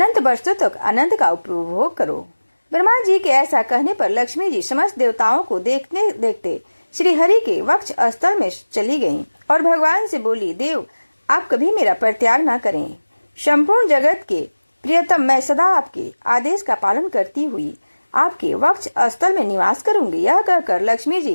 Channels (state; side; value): inverted; both; correlation -1.00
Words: वर्षों तक आनंद का उपभोग करो। ब्रह्मा जी के ऐसा कहने पर लक्ष्मी जी समस्त देवताओं को देखते देखते श्री हरि के वक्ष स्थल में चली गयी और भगवान से बोली, देव आप कभी मेरा परित्याग न करें। संपूर्ण जगत के प्रियतम मैं सदा आपके आदेश का पालन करती हुई आपके वक्ष स्थल में निवास करूंगी। यह कहकर लक्ष्मी